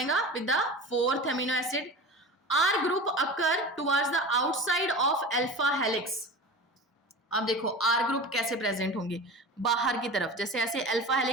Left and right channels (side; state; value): both; normal; correlation 0.32